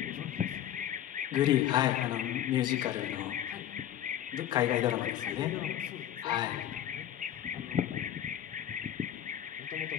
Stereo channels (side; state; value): right; quieter; 11.3 dB